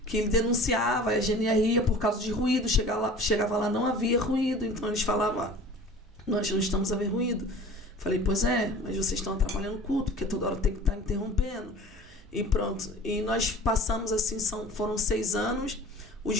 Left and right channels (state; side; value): normal; both; correlation 0.43